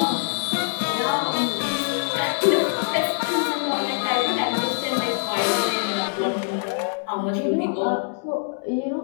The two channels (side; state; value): right; silent; digital silence